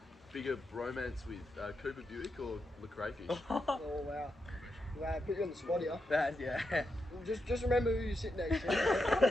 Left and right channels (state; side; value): normal; both; correlation 0.85